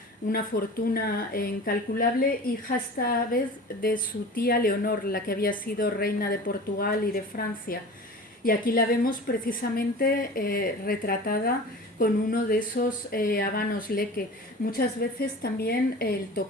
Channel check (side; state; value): both; normal; correlation 0.37